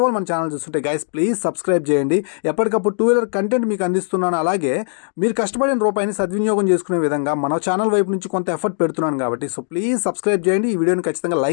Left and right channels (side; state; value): right; silent; digital silence